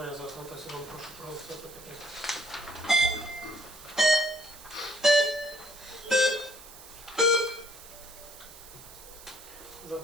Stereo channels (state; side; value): noise; right; hiss, 17 dB below the sound